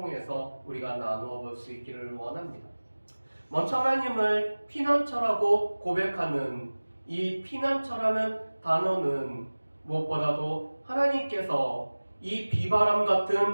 우리가 나누어 볼 수 있기를 원합니다. 먼저 하나님을 피난처라고 고백하는 이 피난처라는 단어는 무엇보다도 하나님께서 이 비바람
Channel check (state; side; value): inverted; both; correlation -1.00